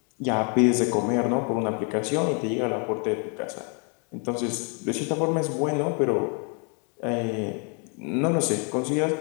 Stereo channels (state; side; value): quieter; right; 38.0 dB